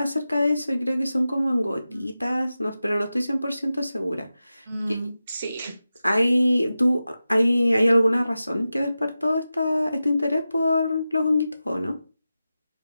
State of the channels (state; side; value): inverted; both; correlation -0.93